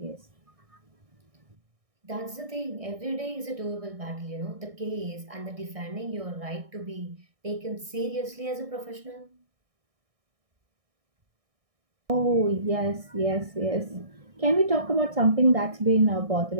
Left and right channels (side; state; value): left; late; 1.6 ms